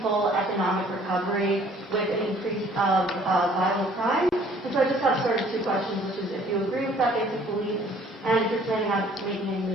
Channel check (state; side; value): normal; both; correlation 0.56